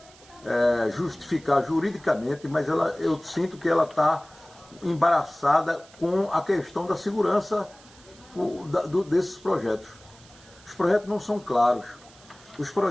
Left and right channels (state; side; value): noise; right; hiss, 24 dB below the sound